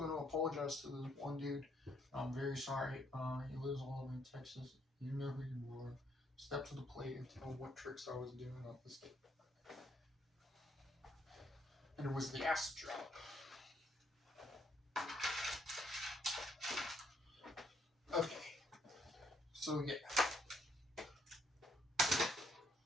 to apologize to this one dude. I'm very sorry. He lives all over in Texas. You know who you are. Step to the plate and tell what tricks I was doing on this day. And it was the acid drop. Okay. So, yeah.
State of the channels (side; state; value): both; normal; correlation 0.71